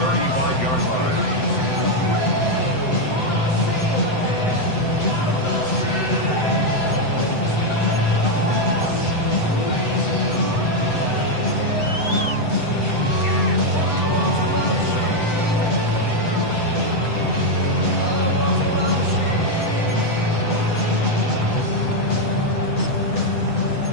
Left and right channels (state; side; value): late; right; 7.9 ms